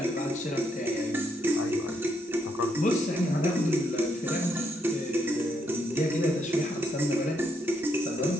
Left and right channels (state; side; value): normal; both; correlation 0.76